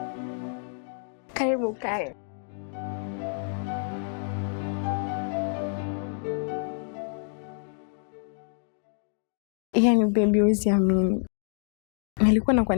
Karibu kae. Yaani baby, usiamini. Nilikuwa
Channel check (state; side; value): silent; right; 59 dB below the other